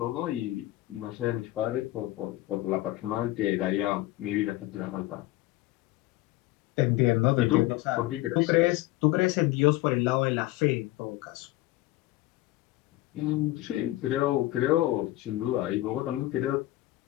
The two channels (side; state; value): right; quieter; 17.3 dB